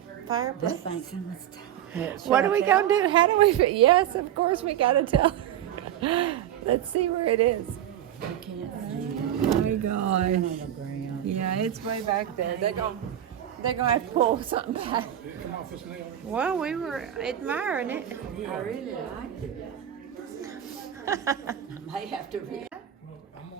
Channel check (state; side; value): quieter; left; 11.1 dB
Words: fireplace. thing's in this time. What are we gonna do? How do we? Yes, of course we gotta tell. Let's see where it is. I can't see Oh my it. gosh. On the ground. Yeah, it's way back there. They're gonna have to pull something back. Well, we were admiring it. I really liked it. I may have to Well, I'm